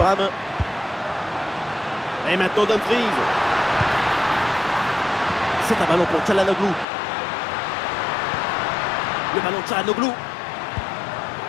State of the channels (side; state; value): right; drops out; at 6.9 s